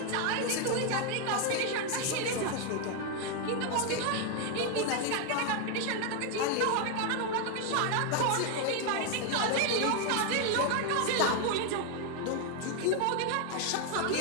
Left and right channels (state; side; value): different; both; correlation 0.01